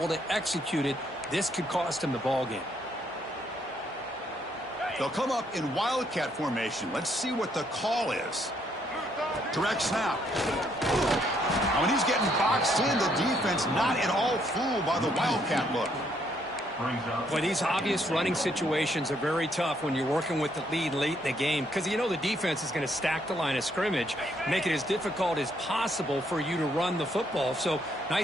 to execute it. This could cost him the ball game. They'll come up in wildcat formation. Let's see what the call is. Direct snap. Now, when he's getting boxed in, the defense not at all fooled by the wildcat look. Boy, these obvious running situations are very tough when you're working with the lead late in the game, because you know the defense is going to stack the line of scrimmage, make it as difficult as possible for you to run the football. So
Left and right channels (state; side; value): normal; both; correlation 0.71